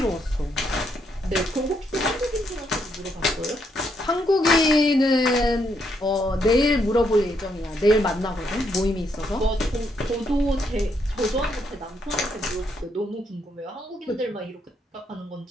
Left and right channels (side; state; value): both; normal; correlation 0.76